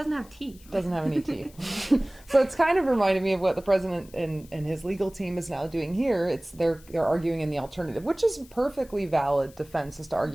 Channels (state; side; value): noise; left; hiss, 25 dB below the sound